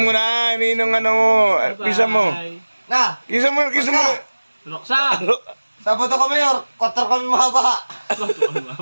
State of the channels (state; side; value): inverted; both; correlation -1.00